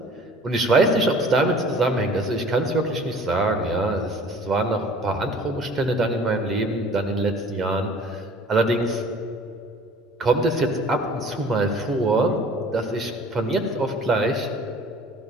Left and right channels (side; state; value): both; normal; correlation 0.48